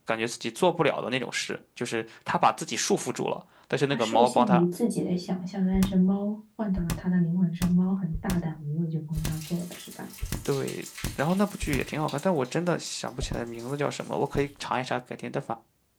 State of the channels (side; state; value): both; identical; correlation 1.00